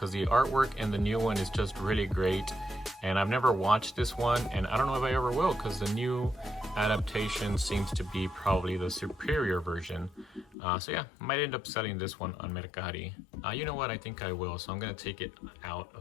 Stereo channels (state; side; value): drops out; right; at 10.6 s